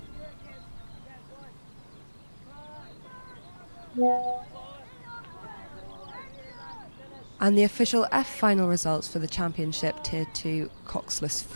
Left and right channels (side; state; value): both; inverted; correlation -1.00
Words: And the official F final results for the Championship Tier 2 Coxless